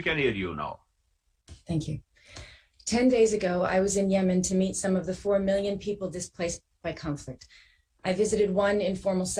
can hear you now. Thank you. 10 days ago, I was in Yemen to meet some of the 4 million people displaced by conflict. I visited one informal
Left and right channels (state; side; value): identical; both; correlation 1.00